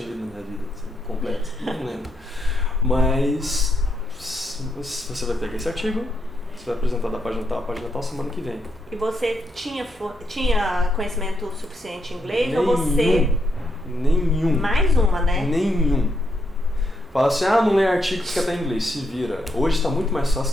lido na minha vida? Assim, completo? Não lembro. Mas você vai pegar esse artigo, você vai apresentar da página tal, semana que vem. E você tinha conhecimento suficiente em inglês ou você... Nenhum. Mais uma, né? Nenhum. Fala assim, não lê artigos que até em inglês, se vira. Hoje está muito mais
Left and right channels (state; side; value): normal; both; correlation 0.79